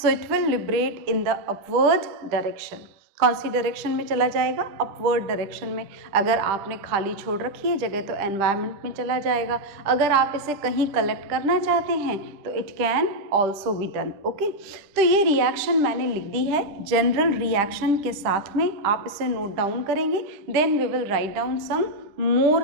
it will liberate in the upward direction। कौन सी डायरेक्शन में चला जाएगा? अपवर्ड डायरेक्शन में। अगर आपने खाली छोड़ रखी है जगह तो एनवायरनमेंट में चला जाएगा। अगर आप इसे कहीं कलेक्ट करना चाहते हैं तो it can also be done. Okay, तो ये रिएक्शन मैंने लिख दी है जनरल रिएक्शन के साथ में, आप इसे नोट डाउन करेंगे। Then we will write down some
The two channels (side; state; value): left; late; 10 ms